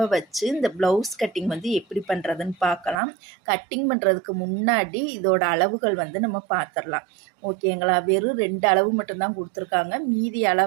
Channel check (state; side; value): drops out; left; at 3.0 s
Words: வச்சு இந்த ப்ளவுஸ் கட்டிங் எப்படி பண்ணுறதுன்னு பார்க்கலாம். கட்டிங் பண்ணுறதுக்கு முன்னாடி இதோட அளவுகள் நம்ம பார்த்துடலாம். ஓகேங்களா? வெறும் 2 அளவு மட்டும்தான் கொடுத்துருக்காங்க. மீதி